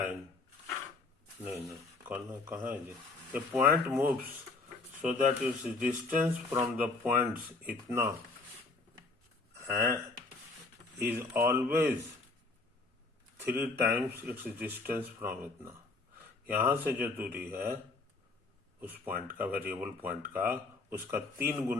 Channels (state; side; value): quieter; right; 3.6 dB